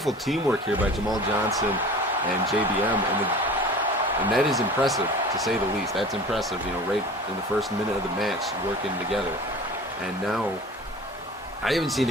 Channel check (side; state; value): both; normal; correlation 0.40